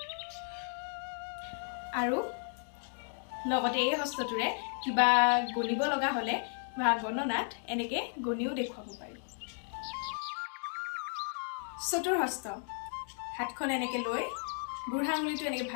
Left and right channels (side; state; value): right; silent; 55 dB below the other